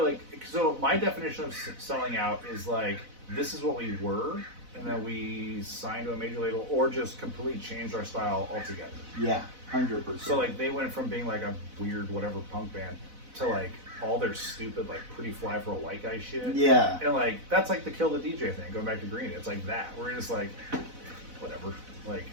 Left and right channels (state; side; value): late; left; 4.0 ms